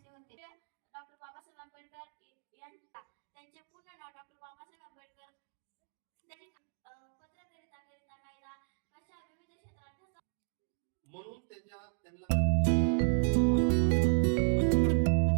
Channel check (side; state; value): left; silent; digital silence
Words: होते. डॉक्टर बाबासाहेब आंबेडकर यांचा त्यांचे पूर्ण नाव डॉक्टर बाबासाहेब आंबेडकर. त्यांनी पत्रकारिता कायदा अशा विविध क्षेत्रात म्हणून त्यांना